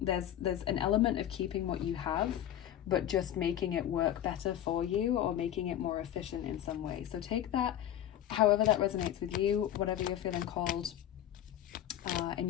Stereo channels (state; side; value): quieter; right; 11.2 dB